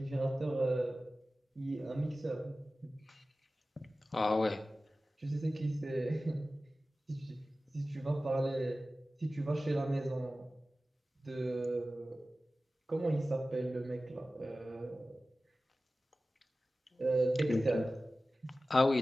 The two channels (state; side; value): normal; both; correlation 0.95